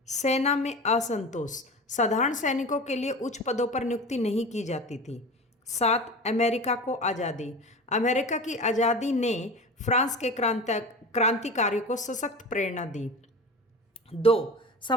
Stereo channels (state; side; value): normal; both; correlation 0.32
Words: सेना में असंतोष। साधारण सैनिकों के लिए उच्च पदों पर नियुक्ति नहीं की जाती थी। 7 अमेरिका को आज़ादी। अमेरिका की आज़ादी ने फ्रांस के क्रांतिकारियों को सशक्त प्रेरणा दी। 2